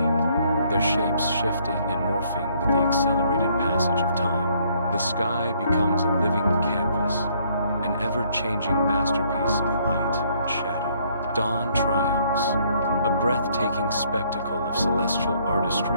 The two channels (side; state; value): both; inverted; correlation -0.66